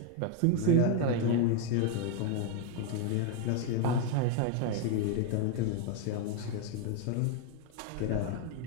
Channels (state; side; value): different; both; correlation 0.01